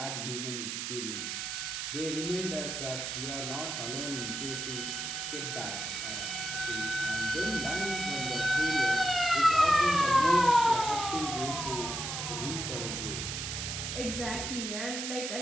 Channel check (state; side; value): noise; right; hiss, 4 dB below the sound